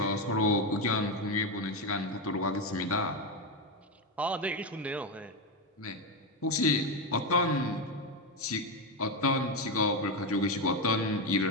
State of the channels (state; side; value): normal; both; correlation 0.10